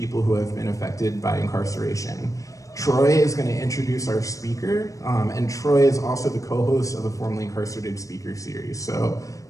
who have been affected by incarceration. Troy is going to introduce our speaker, and Troy is also the co-host of the formerly incarcerated speaker series. So,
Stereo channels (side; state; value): right; late; 0.16 ms